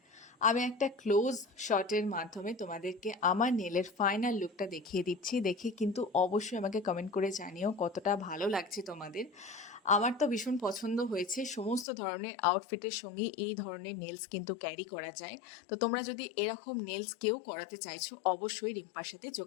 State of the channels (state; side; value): drops out; right; at 11.9 s